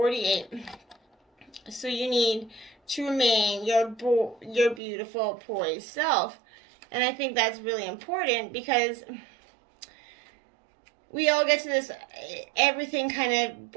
So you need to remain your beautiful, poised self. And I think that's really important because we all get to this, everything kind of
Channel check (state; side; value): drops out; left; at 4.8 s